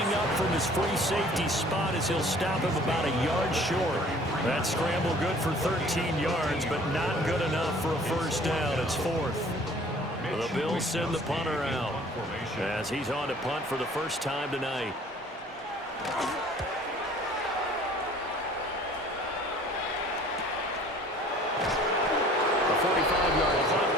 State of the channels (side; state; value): both; normal; correlation 0.52